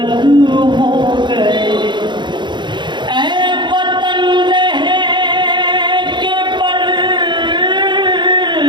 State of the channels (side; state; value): left; late; 0.22 ms